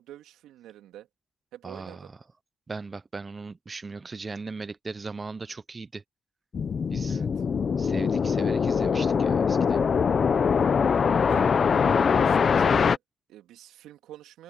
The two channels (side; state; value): right; quieter; 5.5 dB